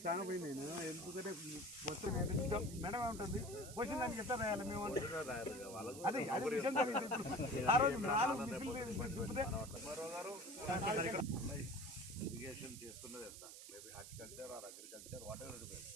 చాలా పోయింది ఎందుకంటే మొత్తం మేడం ఉంటుంది క్వశ్చన్ దానికి ఎట్లా రాయాలి మేము అదే అదే విషయం ఆ రోజు 4 ఇరిగేషన్ చేస్తున్నది ఎంత maybe horticulture are agriculture what ever it is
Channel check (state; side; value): noise; right; hiss, 12 dB below the sound